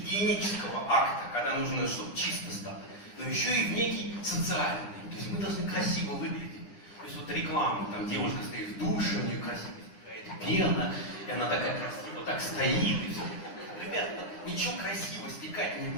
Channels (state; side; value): late; right; 9.9 ms